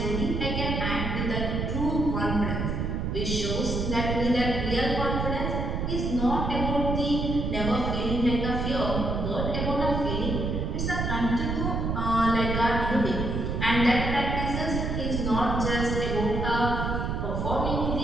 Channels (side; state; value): right; noise; rumble, 1 dB below the sound